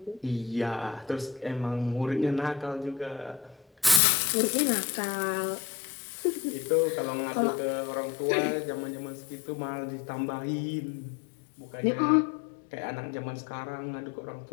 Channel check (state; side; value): drops out; right; at 4.0 s